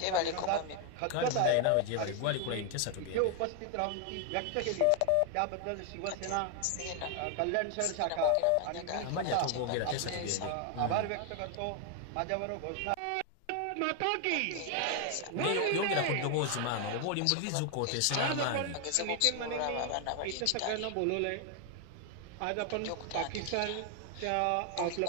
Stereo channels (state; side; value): different; both; correlation 0.00